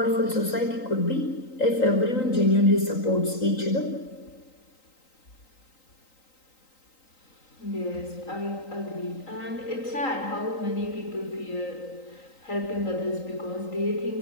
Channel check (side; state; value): right; late; 3.9 ms